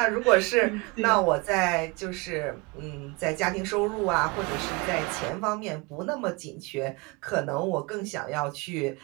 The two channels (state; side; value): quieter; left; 26.9 dB